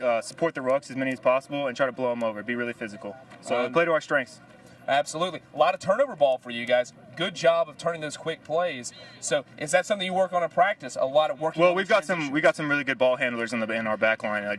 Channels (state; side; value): identical; both; correlation 1.00